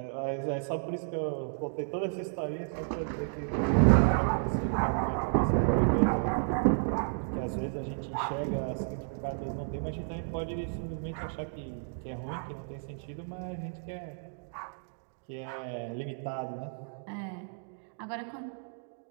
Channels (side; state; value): left; silent; digital silence